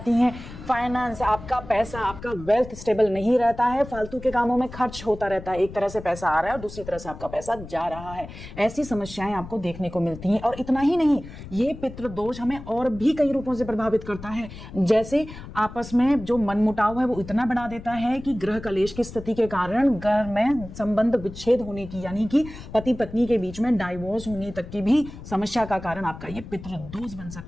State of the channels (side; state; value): left; noise; rumble, 14 dB below the sound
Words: हैं। फाइनेंस, आपका पैसा, आपका वेल्थ स्टेबल नहीं रहता है, फालतू के कामों में खर्च होता रहता है। एक तरह से पैसा आ रहा है और दूसरी तरह से आपका पैसा जा रहा है। ऐसी समस्याएं आपको देखने को मिलती हैं। और इतना ही नहीं, ये पितृदोष हमें और भी कई रूपों से प्रभावित करता है। जैसे आपस में जो मनमुटाव है वो इतना बढ़ा देता है कि ग्रह कलेश की स्थिति के कारण घर में संबंध विच्छेद होने की, यानी कि पति पत्नी के बीच में डाइवोर्स होने तक की भी समस्या का कारण आपका ये पितृदोष बन